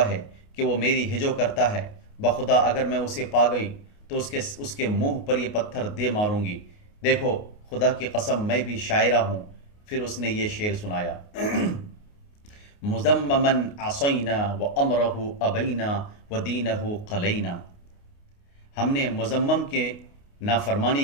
ہے کہ وہ میری ہجو کرتا ہے، بخدا اگر میں اسے پا گئی تو اس کے منہ پر یہ پتھر دے ماروں گی، دیکھو خدا کی قسم میں بھی شاعرہ ہوں۔ پھر اس نے یہ شعر سنایا، مذمما عصینا وامرہ ابینا ودینہ قلینا۔ ہم نے مذمم کے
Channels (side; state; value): right; late; 29 ms